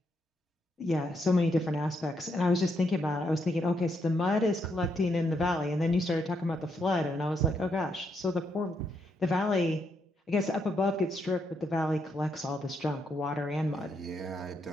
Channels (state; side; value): normal; both; correlation 0.78